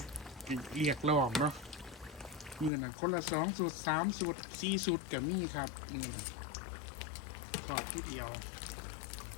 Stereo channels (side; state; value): right; drops out; at 2.7 s